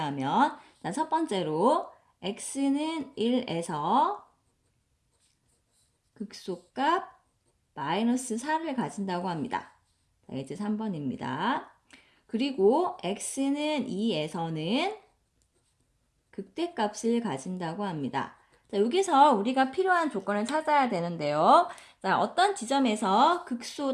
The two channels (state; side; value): identical; both; correlation 1.00